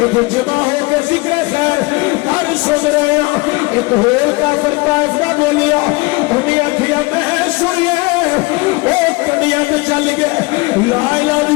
جمع ہو کے ذکر خیر کر سن رہے ہیں. ایک ہور کافر طائف دا بولیا انہیں آکھیا میں سنیے او کنڈیاں تے چل گئے لا الہ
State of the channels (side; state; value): right; quieter; 24.8 dB